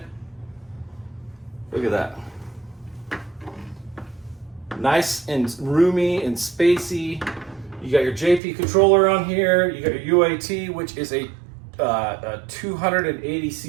Look at that. Nice and roomy and spacey. You got your JP controller on here. You got your UAT, which is a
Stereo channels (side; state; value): left; drops out; at 8.4 s